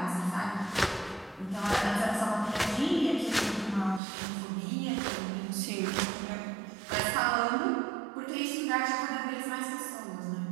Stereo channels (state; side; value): drops out; left; at 4.0 s